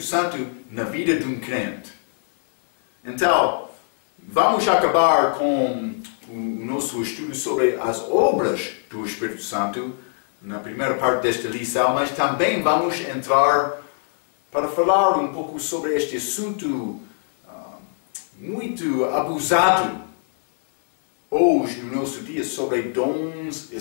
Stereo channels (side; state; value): right; silent; 64 dB below the other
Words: na vida de um crente. Então, vamos acabar com o nosso estudo sobre as obras do Espírito Santo na primeira parte desta lição, mas também vamos entrar para falar um pouco sobre este assunto muito abusado hoje no nosso dia, sobre dons